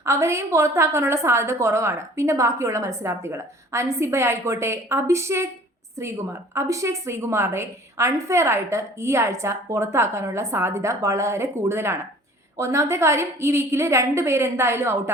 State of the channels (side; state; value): both; normal; correlation 0.49